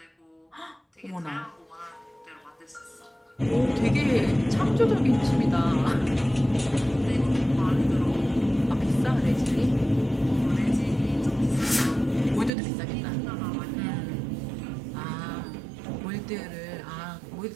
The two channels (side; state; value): left; drops out; at 12.5 s